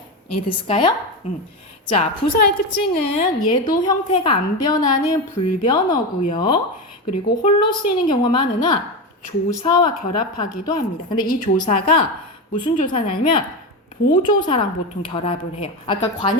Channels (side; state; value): both; normal; correlation 0.17